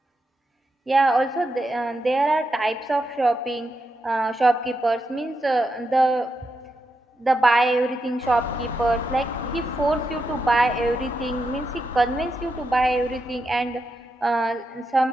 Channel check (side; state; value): both; normal; correlation 0.85